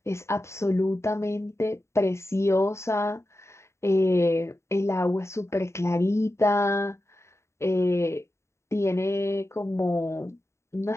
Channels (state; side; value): late; right; 0.13 ms